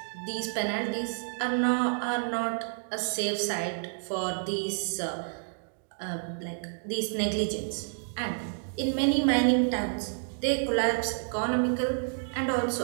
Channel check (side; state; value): left; silent; digital silence